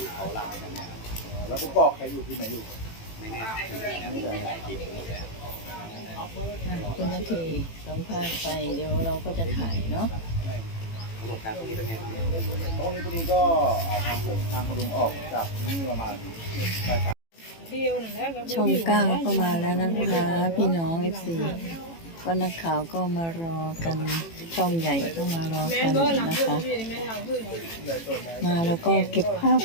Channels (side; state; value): right; late; 18 ms